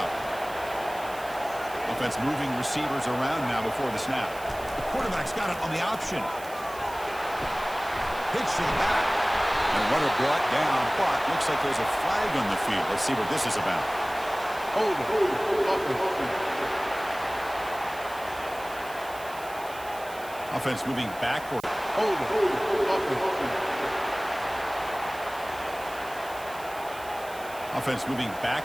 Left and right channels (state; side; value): noise; right; hiss, 18 dB below the sound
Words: Offense moving receivers around now before the snap. Quarterback's got it on the option. Pitch to the back. And a runner brought down, but looks like there's a flag on the field. Let's see what this is about. Hold it. Offense moving backward. Hold it. offense moving